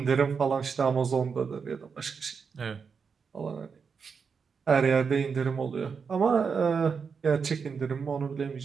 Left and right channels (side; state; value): left; quieter; 5.8 dB